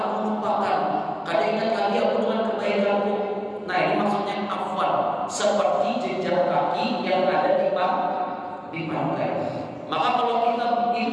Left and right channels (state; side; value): identical; both; correlation 1.00